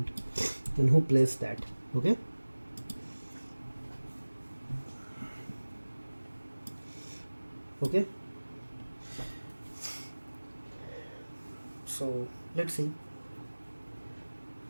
and who placed that. Okay, okay, so let's see.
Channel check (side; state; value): both; inverted; correlation -1.00